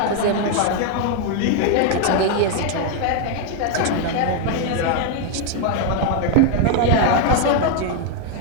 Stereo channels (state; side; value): different; both; correlation 0.00